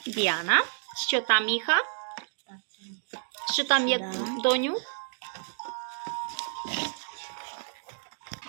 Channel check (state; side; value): silent; left; 58 dB below the other